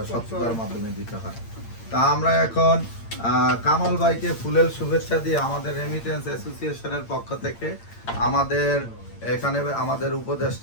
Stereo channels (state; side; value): late; right; 8.8 ms